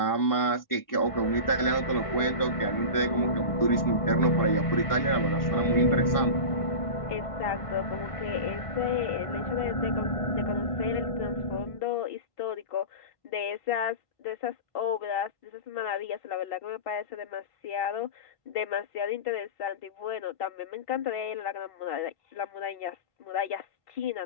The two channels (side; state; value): right; late; 1.5 ms